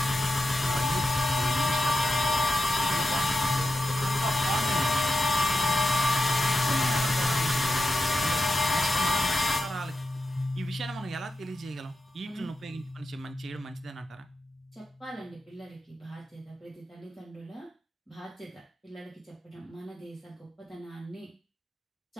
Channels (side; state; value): both; normal; correlation 0.88